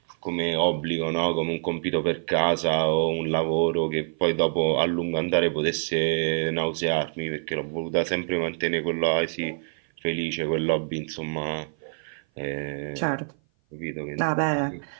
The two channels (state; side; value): silent; left; 56 dB below the other